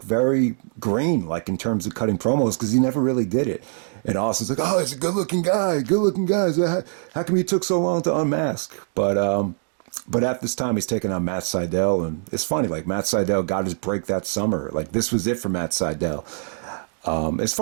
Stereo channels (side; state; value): left; silent; digital silence